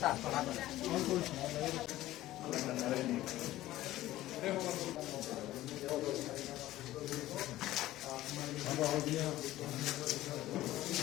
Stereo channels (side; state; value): right; quieter; 15.4 dB